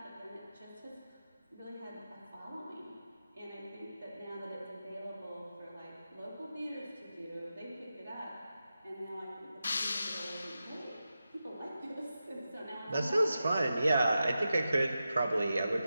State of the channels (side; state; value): both; inverted; correlation -0.91